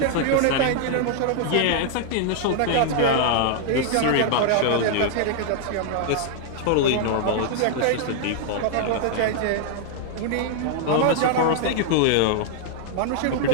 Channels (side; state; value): both; different; correlation 0.00